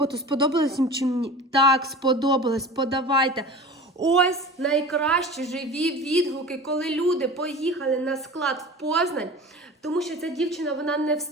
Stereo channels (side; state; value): both; normal; correlation 0.36